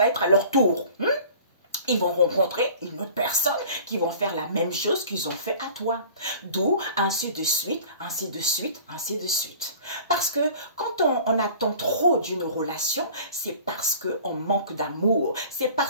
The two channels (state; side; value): inverted; both; correlation -0.44